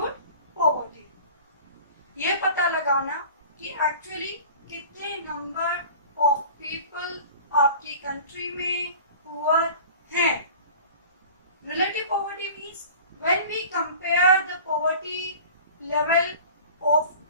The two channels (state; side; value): inverted; both; correlation -0.41